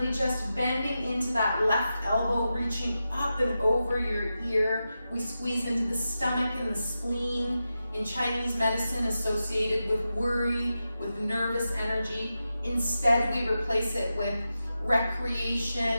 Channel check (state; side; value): inverted; both; correlation -0.91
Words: just bending into that left elbow, reaching up and over your ear. We squeeze into the stomach and the spleen. In Chinese medicine, associated with worry, with nervous energy. Instead, we replace it with